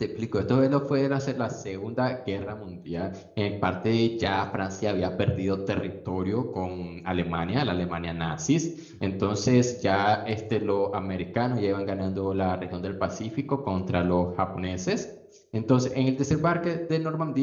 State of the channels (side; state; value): both; identical; correlation 1.00